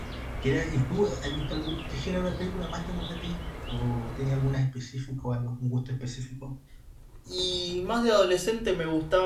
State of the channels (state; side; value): identical; both; correlation 1.00